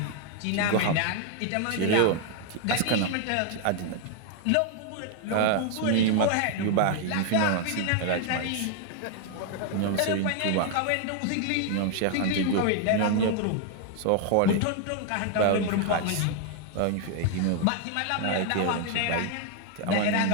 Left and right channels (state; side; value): different; both; correlation 0.00